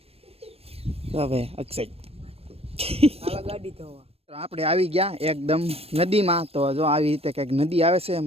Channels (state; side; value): late; left; 0.28 ms